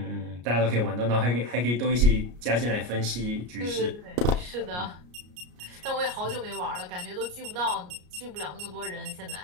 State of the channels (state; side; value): late; left; 33 ms